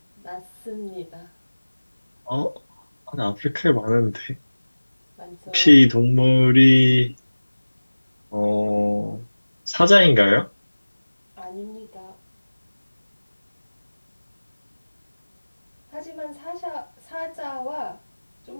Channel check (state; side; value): inverted; both; correlation -1.00